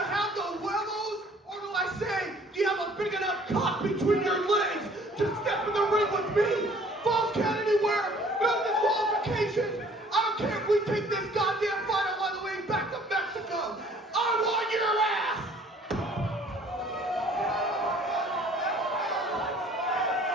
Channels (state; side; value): normal; both; correlation 0.55